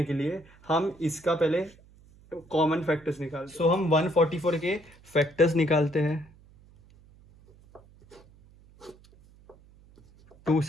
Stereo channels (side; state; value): right; noise; hum, 26 dB below the sound